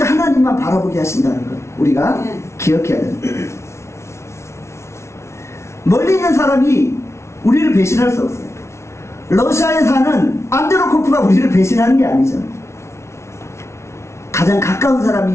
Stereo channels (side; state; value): right; late; 0.13 ms